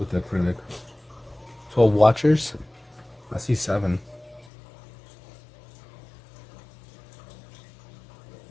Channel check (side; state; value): right; drops out; at 4.5 s